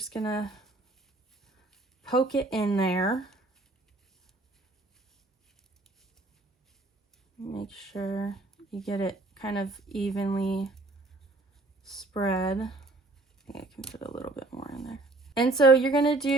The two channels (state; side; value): quieter; left; 3.1 dB